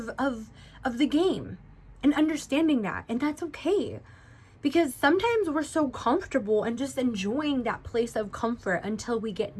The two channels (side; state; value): both; identical; correlation 1.00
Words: the game, and understanding that, and that's okay. Because sometimes we're so comfortable and just enjoying that place of comfort until we